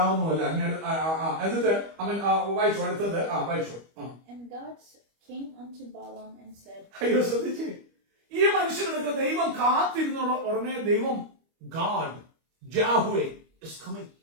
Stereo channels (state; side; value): late; left; 25 ms